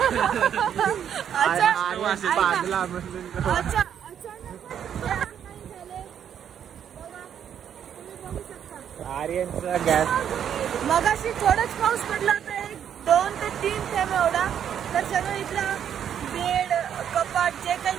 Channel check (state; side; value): quieter; left; 9.0 dB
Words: आर्यनचा गॅस. मगाशी थोडंच पाऊस पडला होता, 1, 2 ते 3 थेंब एवढा. तर सगळं इथलं बेड, कपाट जे काही